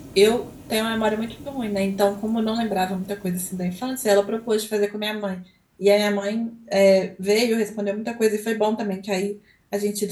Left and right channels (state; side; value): identical; both; correlation 1.00